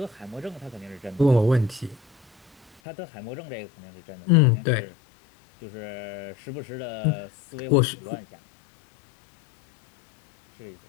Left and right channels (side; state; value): right; drops out; at 2.7 s